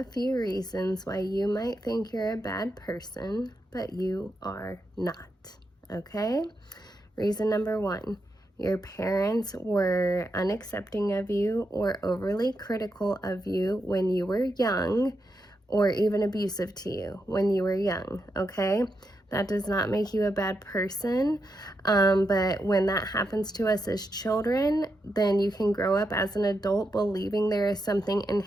few reasons why you might think you're a bad person, but you are not. Okay? Reason number one, your parents were unaccepting of you or overly critical of you when you were young, or even abusive to you when you were young. Okay? That does not make you a bad person. But when that happens to us as children, then you can grow up as an adult believing there is something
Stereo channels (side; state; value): both; normal; correlation 0.84